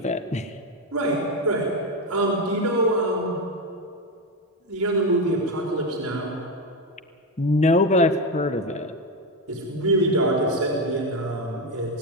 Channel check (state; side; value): normal; both; correlation 0.12